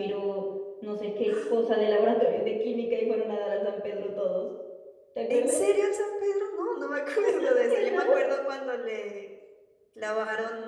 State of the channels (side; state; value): both; identical; correlation 1.00